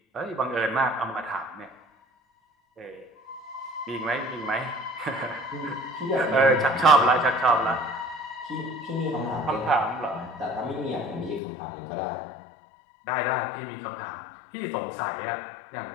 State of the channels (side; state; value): right; drops out; at 11.4 s